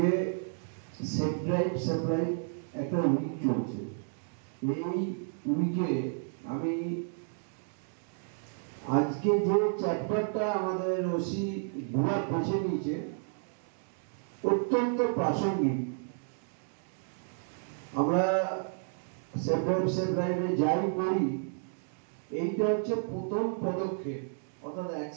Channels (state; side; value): silent; left; digital silence